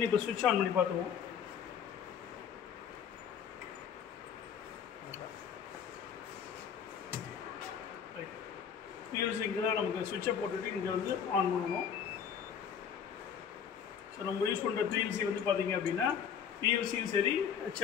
இப்போ ஸ்விட்ச் ஆன் பண்ணி பார்த்துருவோம். பிஎல்சி இங்கே தான் நமக்கு ஸ்விட்சை போட்டுட்டு இங்கே வந்து ஆன் பண்ணணும். ஸோ நம்ம யூஸ் பண்ணுற பிஎல்சி வந்து பார்த்தீங்க அப்படின்னா பிஎல்சியும் சரி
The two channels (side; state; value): right; quieter; 7.8 dB